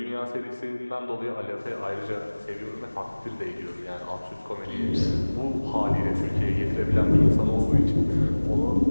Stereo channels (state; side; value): inverted; both; correlation -1.00